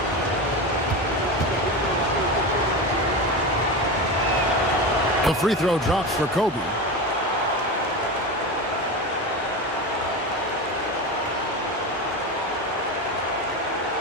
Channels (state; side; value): normal; both; correlation 0.22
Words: The free throw drops for Kobe.